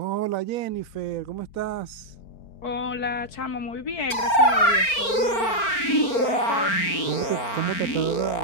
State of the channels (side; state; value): right; late; 4.4 ms